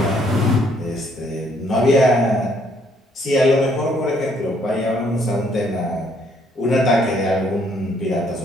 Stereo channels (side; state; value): both; normal; correlation 0.67